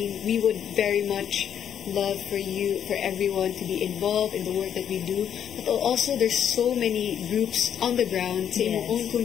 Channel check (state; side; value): quieter; right; 9.1 dB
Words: we would very much love for everyone to be involved in the work that we do, but also there's so many groups on the ground in your own